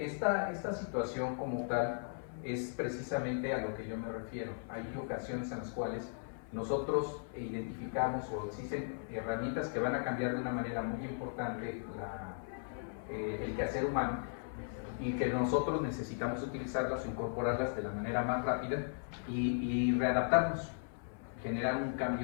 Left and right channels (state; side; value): silent; right; 53 dB below the other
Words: situación como tal es precisamente a lo que yo me refiero. Hay ocasiones en las cuales nosotros identificamos o existen herramientas que van a cambiar de una manera muy importante el quehacer humano y que nosotros necesitamos utilizarlas o incorporarlas de la manera más rápida y readaptarnos, generar un